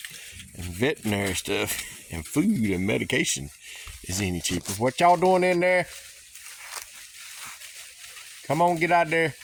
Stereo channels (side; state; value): both; identical; correlation 1.00